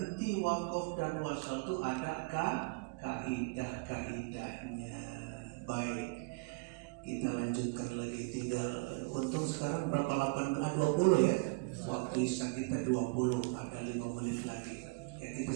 wakaf dan wasol itu ada kaidahnya. Baik, kita lanjutkan lagi. Tinggal untung sekarang berapa 20 ya. Waktu isya kita 20, ada 5 menit lagi. Ya, kita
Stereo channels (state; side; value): quieter; left; 28.5 dB